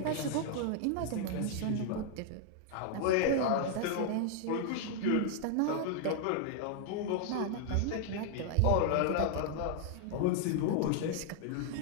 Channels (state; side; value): different; both; correlation 0.00